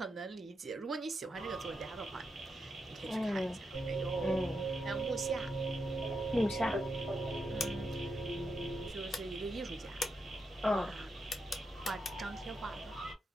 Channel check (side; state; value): both; normal; correlation 0.84